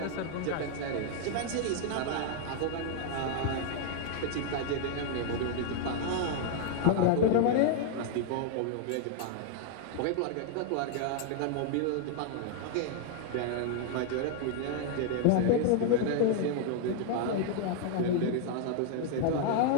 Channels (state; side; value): different; both; correlation 0.00